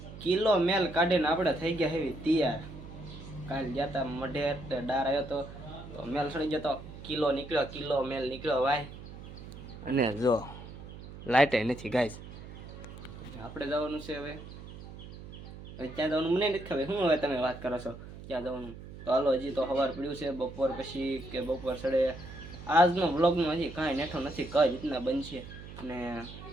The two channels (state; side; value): noise; right; hum, 14 dB below the sound